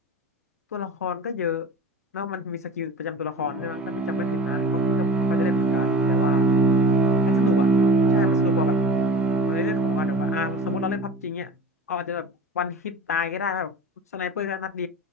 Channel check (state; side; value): normal; both; correlation 0.35